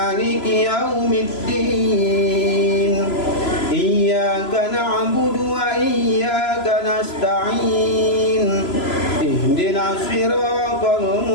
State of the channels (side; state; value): right; late; 3.0 ms